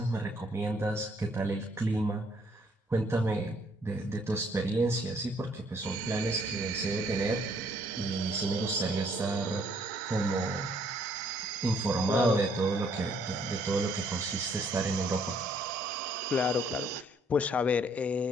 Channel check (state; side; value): normal; both; correlation 0.66